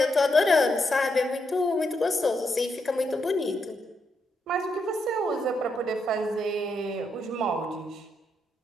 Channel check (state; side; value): normal; both; correlation 0.80